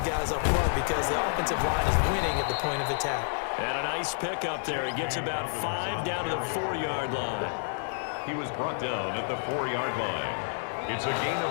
guys up front because the offensive line is winning at the point of attack. And a nice pickup there. He gets about 5 down to the 4-yard line. He was brought down at the 4-yard line. It's a gain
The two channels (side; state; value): right; silent; digital silence